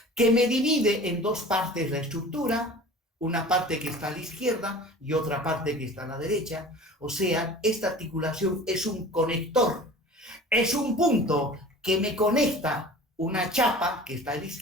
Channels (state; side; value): normal; both; correlation 0.41